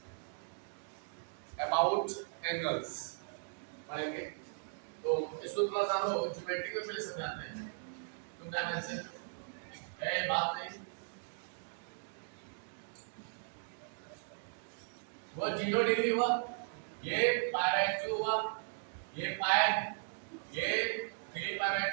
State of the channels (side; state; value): left; silent; digital silence